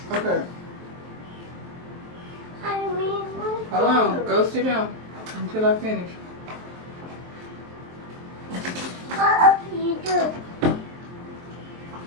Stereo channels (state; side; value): late; left; 23 ms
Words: Okay. I mean, Hold on. Go sit down until I finish. what you do?